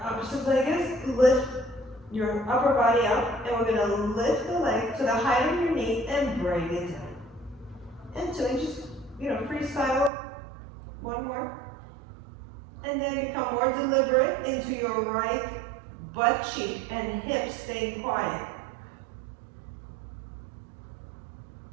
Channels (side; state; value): left; drops out; at 10.1 s